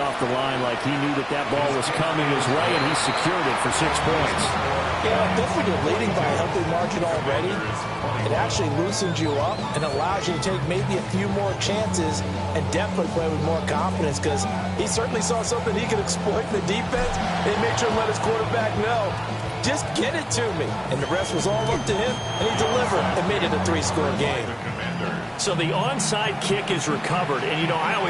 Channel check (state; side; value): identical; both; correlation 1.00